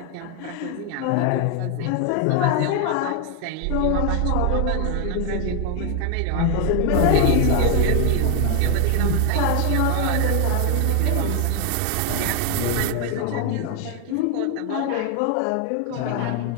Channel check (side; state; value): both; different; correlation 0.01